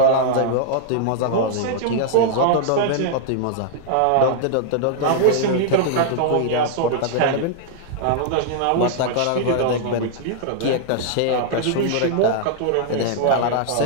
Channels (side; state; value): both; different; correlation -0.01